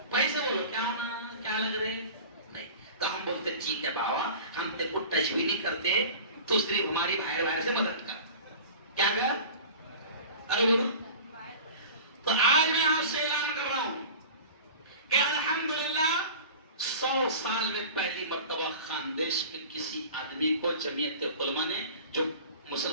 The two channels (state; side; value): inverted; both; correlation -0.38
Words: پیسے بولو کیا ہونا، کیا لگ رہے نہیں، تو ہم بولتے ٹھیک ہے بابا ہم تیرے کو ٹچ بھی نہیں کرتے، تو صرف ہماری باہر سے مدد کر، کیا کر؟ ارے بولو، تو آج میں آپ سے اعلان کر رہا ہوں کہ الحمدللہ 100 سال میں پہلی مرتبہ خاندیش میں کسی آدمی کو جمعیت علماء نے، جو